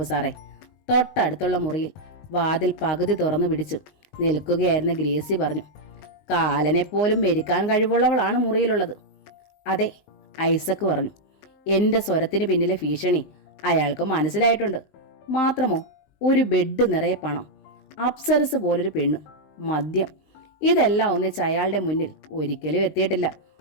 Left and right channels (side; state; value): right; late; 20 ms